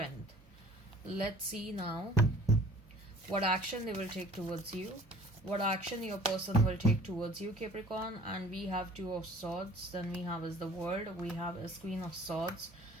Let's see now what action they will take towards you. What action your person will take towards you, Capricorn. And we have Two of Swords. Then we have is the World. We have is Queen of Swords,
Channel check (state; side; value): normal; both; correlation 0.50